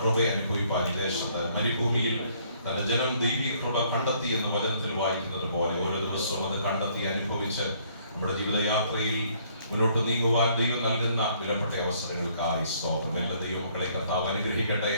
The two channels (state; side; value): inverted; both; correlation -0.64